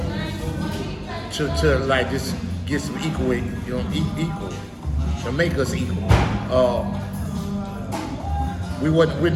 to like just get some equal, you know, equal, to make us equal. We're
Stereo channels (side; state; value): both; identical; correlation 1.00